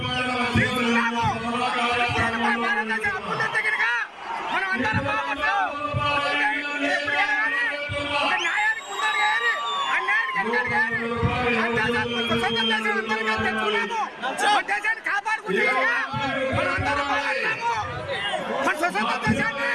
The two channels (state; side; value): identical; both; correlation 1.00